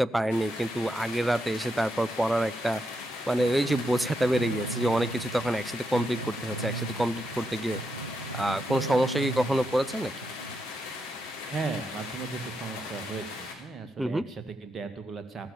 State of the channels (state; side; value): normal; both; correlation 0.82